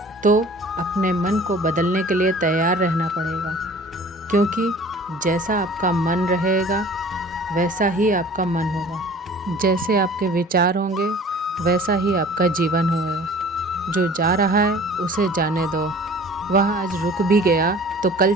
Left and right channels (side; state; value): both; normal; correlation 0.47